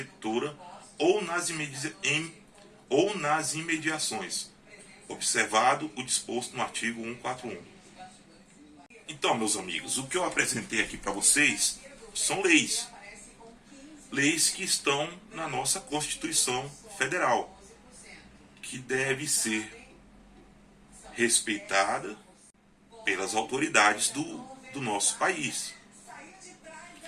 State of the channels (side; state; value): both; identical; correlation 1.00